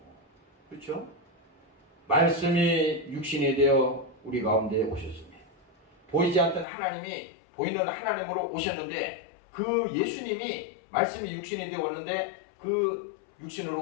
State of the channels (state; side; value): drops out; right; at 6.7 s